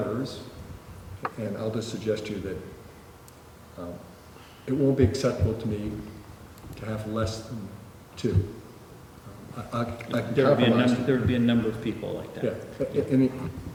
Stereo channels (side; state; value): both; identical; correlation 1.00